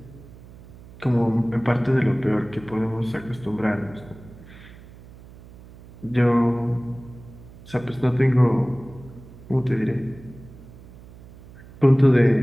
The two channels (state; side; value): noise; right; hum, 20 dB below the sound